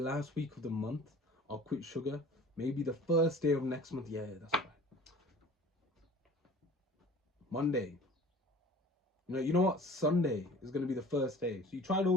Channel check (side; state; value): both; normal; correlation 0.45